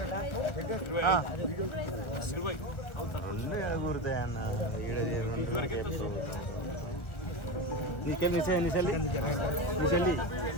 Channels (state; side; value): late; right; 1.3 ms